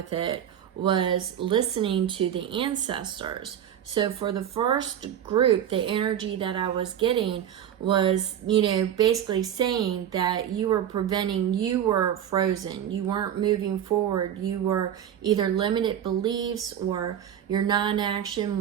it was listening to the ancestors. So for the first group, the energy that I was getting was, basically saying that you were frozen. You weren't moving forward. You were either limited beliefs, or your non-action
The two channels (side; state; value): left; quieter; 9.9 dB